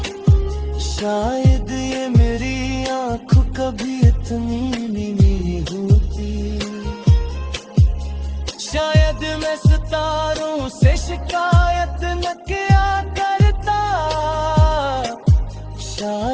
शायद ये मेरी आँख कभी इतनी नहीं होती। शायद मैं सितारों से शिकायत न किया करता,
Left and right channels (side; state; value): both; identical; correlation 1.00